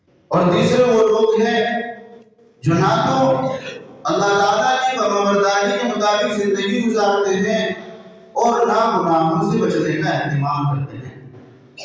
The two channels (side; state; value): both; identical; correlation 1.00